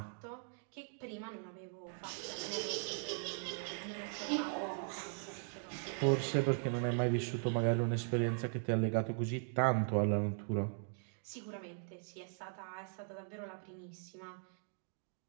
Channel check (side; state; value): left; silent; 51 dB below the other